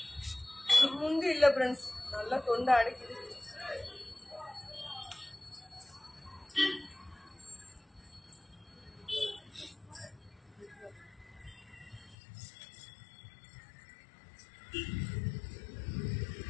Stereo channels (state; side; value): drops out; right; at 12.2 s